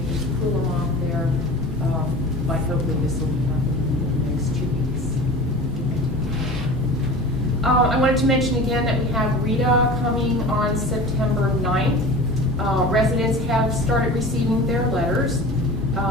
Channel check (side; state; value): both; normal; correlation 0.37